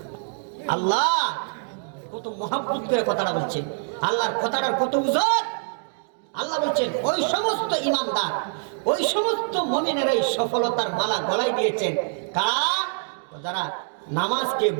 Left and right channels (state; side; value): silent; left; 61 dB below the other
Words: আল্লাহ কত মহব্বত করে কথাটা বলছেন, আল্লাহর কথাটার কত ওজন। আল্লাহ বলছেন ওই সমস্ত ঈমানদার, ওই সমস্ত মুমিনেরাই সফলতার মালা গলায় দিয়েছেন। কারা? যারা নামাজকে